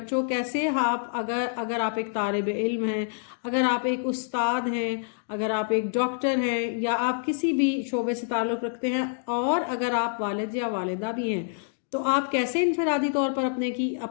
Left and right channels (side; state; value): right; silent; digital silence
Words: کیسے اگر آپ ایک طالب علم ہیں، اگر آپ ایک استاد ہیں، اگر آپ ایک ڈاکٹر ہیں یا آپ کسی بھی شعبے سے تعلق رکھتے ہیں اور اگر آپ والد یا والدہ بھی ہیں، تو آپ کیسے انفرادی طور پر